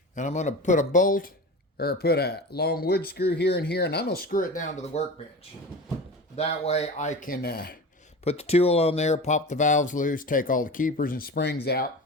I'm going to put a bolt or put a long wood screw here and here, and I'm going to screw it down to the workbench. That way I can put the tool on there, pop the valves loose, take all the keepers and springs out.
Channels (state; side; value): normal; both; correlation 0.31